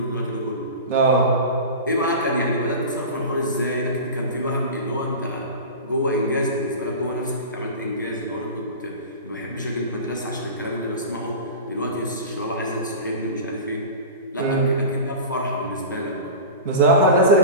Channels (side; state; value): both; inverted; correlation -0.30